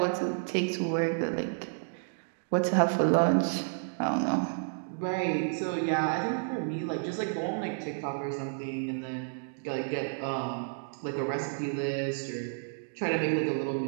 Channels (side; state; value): left; silent; digital silence